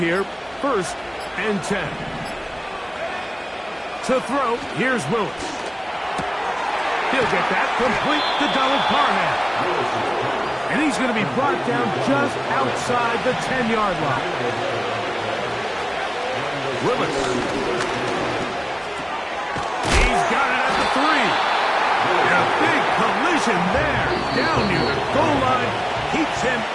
1st and 10. To throw, here's Willis. He'll get that complete to Donald Parham. And he's going to be brought down just outside the 10-yard line. Willis. He's got it at the 3. And a big collision there, down near the goal line, keeps him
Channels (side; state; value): both; identical; correlation 1.00